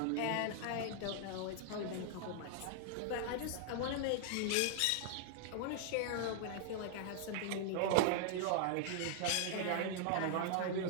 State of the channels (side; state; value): both; different; correlation -0.01